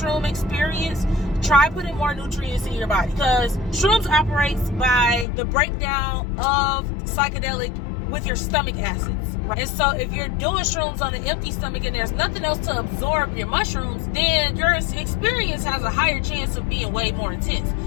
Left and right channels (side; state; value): right; drops out; at 5.2 s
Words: experience, try putting more nutrients in your body, because shrooms operates by the breakdown of psychedelic with your stomach acids, right? And so if you're doing shrooms on an empty stomach and there's nothing else to absorb your mushrooms, then your experience has a higher chance of being way more intense.